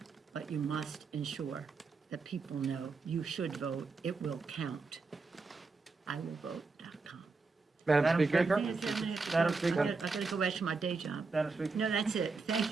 but you must ensure that people know you should vote, it will count. IWillVote.com. Madam Speaker? Madam Speaker? I gotta go back to my day job. Madam Speaker? No, that's it.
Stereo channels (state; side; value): quieter; left; 4.2 dB